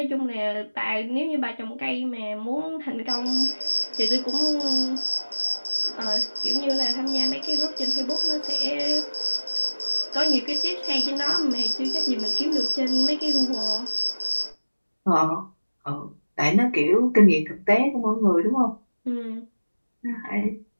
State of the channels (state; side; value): inverted; both; correlation -1.00